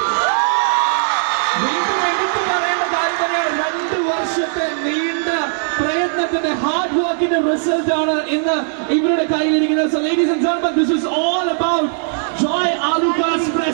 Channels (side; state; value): left; silent; 67 dB below the other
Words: വീണ്ടും എടുത്തു പറയേണ്ട കാര്യം തന്നെയാണ്, 2 വർഷത്തെ നീണ്ട പ്രയത്നം പ്രയത്നത്തിന്റെ ഹാർഡ് വർക്കിന്റെ റിസൾട്ട് ആണ് ഇന്ന് ഇവരുടെ കയ്യിലിരിക്കുന്നത്. So ladies and gentlemen, this is all about Joy Alucard's